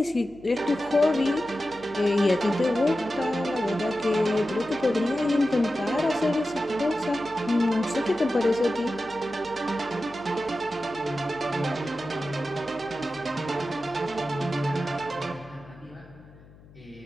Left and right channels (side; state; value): left; noise; hum, 23 dB below the sound